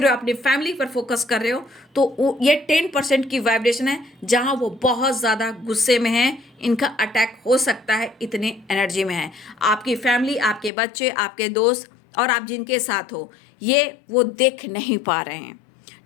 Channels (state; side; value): drops out; right; at 10.7 s